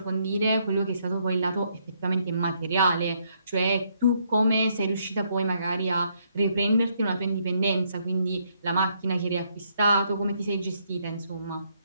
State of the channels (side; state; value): both; inverted; correlation -0.73